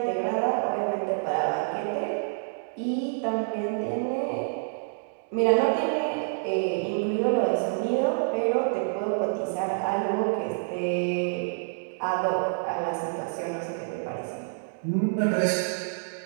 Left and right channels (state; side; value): silent; left; digital silence